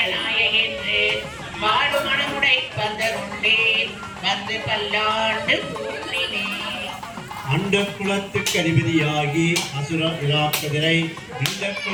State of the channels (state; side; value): identical; both; correlation 1.00